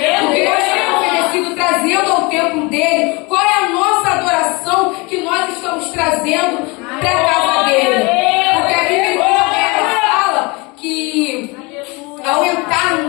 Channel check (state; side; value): quieter; right; 27.0 dB